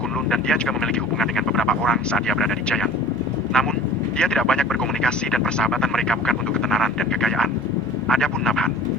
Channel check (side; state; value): both; normal; correlation 0.44